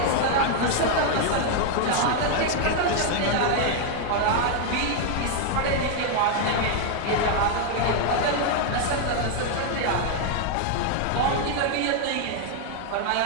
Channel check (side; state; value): both; different; correlation 0.00